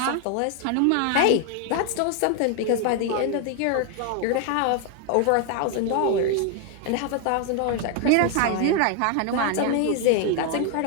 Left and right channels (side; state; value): both; different; correlation 0.01